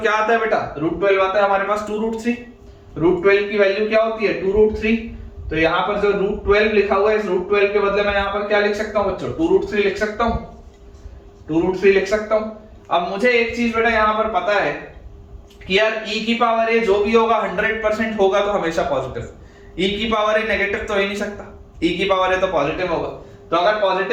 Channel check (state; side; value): identical; both; correlation 1.00